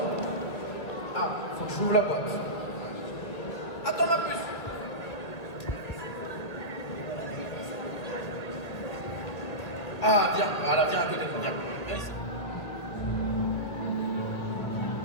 Ah, faut que je ouvre la boîte. Attends ma puce. Ah, viens, voilà, viens à côté de moi, viens. Viens ici.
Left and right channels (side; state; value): right; late; 1.7 ms